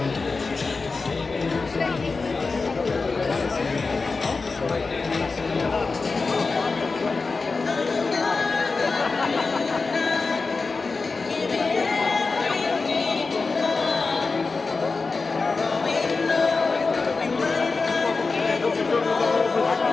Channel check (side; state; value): right; quieter; 4.1 dB